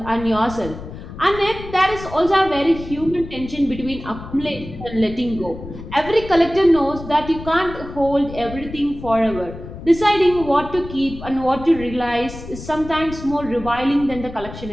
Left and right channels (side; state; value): left; noise; rumble, 12 dB below the sound